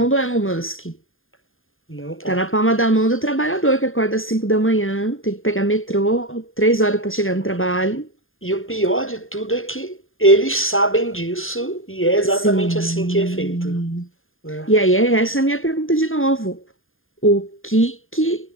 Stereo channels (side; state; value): right; late; 0.59 ms